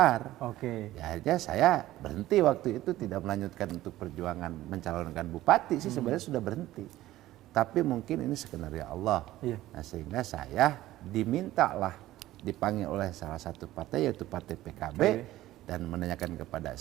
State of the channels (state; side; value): quieter; left; 15.4 dB